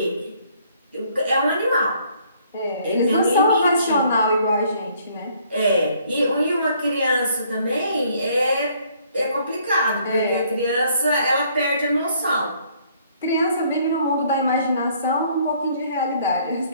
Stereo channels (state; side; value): inverted; both; correlation -0.63